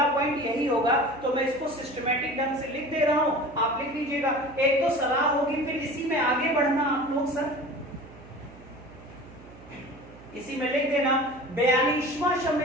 पॉइंट यही होगा। तो मैं इसको सिस्टमैटिक ढंग से लिख दे रहा हूं, आप लिख लीजिएगा। एक तो सलाह होगी, फिर इसी में आगे बढ़ना आप लोग सर, इसी में लिख देना 42वां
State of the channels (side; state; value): right; noise; hum, 20 dB below the sound